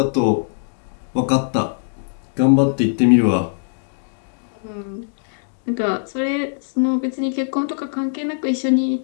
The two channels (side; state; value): right; silent; digital silence